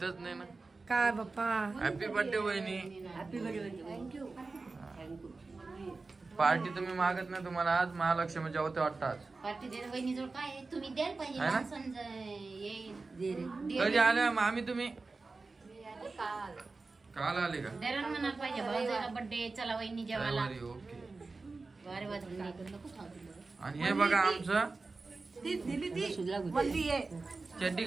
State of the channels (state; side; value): quieter; left; 3.8 dB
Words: नाही ना. काय बाप्पा. हॅपी बर्थडे वहिनी. Happy birthday. थँक्यू. पार्टी तुम्ही मागत नाही, तुम्हाला आज महालक्ष्मीच्या होते वाटतं आज. पार्टी दे वहिनीजवळ काय आहे? तुम्ही द्यायला पाहिजे आहे ना? माणसांचं ये कधी आल्या मामी तुम्ही? काल काल आले का? द्यायला म्हणायला पाहिजे भाऊजाला बर्थडे चला वहिनी जेवायला. रविवारी, ओके. वारे वाजले नको खाऊ. आणि हे बघा आमचं चड्डी